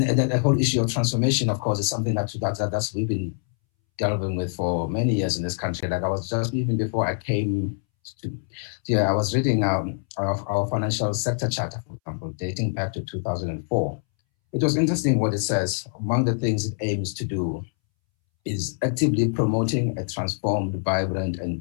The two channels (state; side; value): silent; right; 62 dB below the other